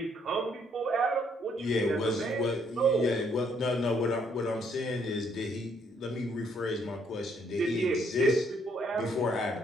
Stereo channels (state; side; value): normal; both; correlation 0.69